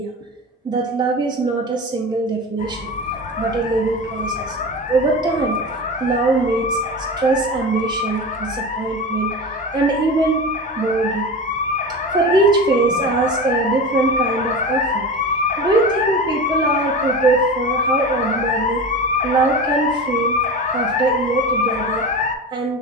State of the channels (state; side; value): normal; both; correlation 0.28